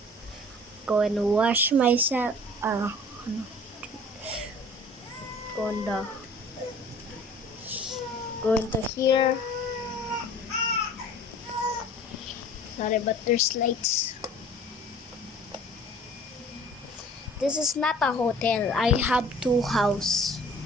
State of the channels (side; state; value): both; normal; correlation 0.48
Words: wash myself. Go into here. Sorry, but there's lights. This is not a hotel. I have two house.